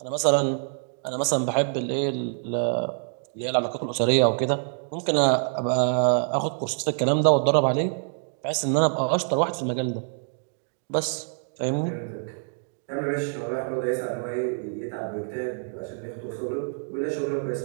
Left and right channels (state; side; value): silent; left; 61 dB below the other